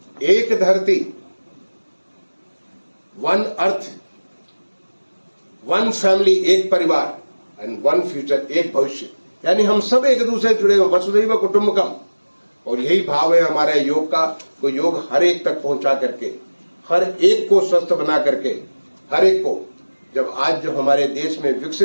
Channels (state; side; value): inverted; both; correlation -1.00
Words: एक धरती, वन अर्थ, वन फैमिली, एक परिवार, एंड वन फ्यूचर, एक भविष्य। यानी हम सब एक दूसरे जुड़े हुए, वसुधैव कुटुंबकम। और यही भाव है हमारे योग का। तो योग हर एक तक पहुंचा करके, हर एक को स्वस्थ बना करके, हर एक को, जब आज जो हमारे देश में